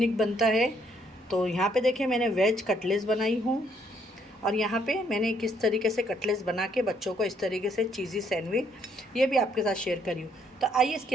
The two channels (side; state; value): both; normal; correlation 0.69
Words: बनता है। तो यहाँ पे देखिए, मैंने वेज कटलेट्स बनाई हूँ। और यहाँ पे मैंने किस तरीके से कटलेट्स बना के बच्चों को इस तरीके से चीज़ी सैंडविच ये भी आपके साथ शेयर करी हूँ। तो आइए इसकी